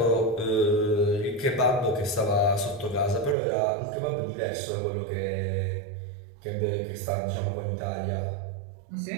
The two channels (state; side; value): drops out; left; at 3.4 s